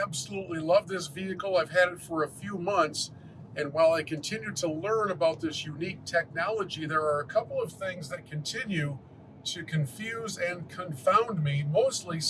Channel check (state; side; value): identical; both; correlation 1.00